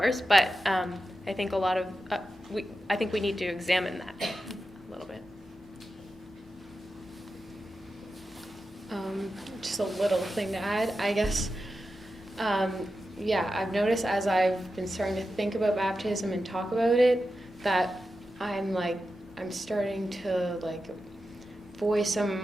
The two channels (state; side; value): normal; both; correlation 0.91